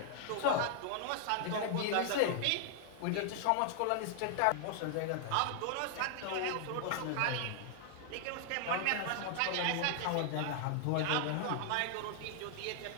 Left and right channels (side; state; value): both; different; correlation 0.00